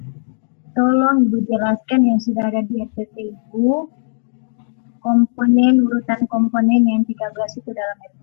tolong Ibu jelaskan yang sudah ada di SPP Ibu, urutan komponen yang 13 itu dalam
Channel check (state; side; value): silent; right; digital silence